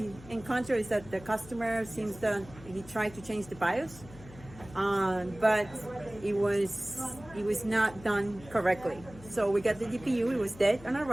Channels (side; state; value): left; noise; hum, 19 dB below the sound